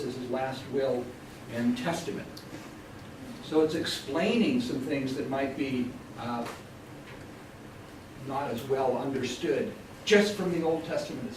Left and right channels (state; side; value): identical; both; correlation 1.00